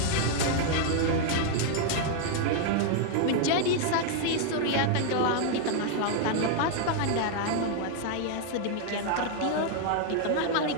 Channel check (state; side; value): different; both; correlation 0.00